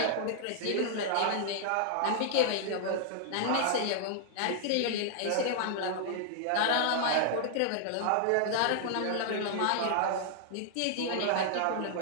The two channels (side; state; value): both; different; correlation -0.01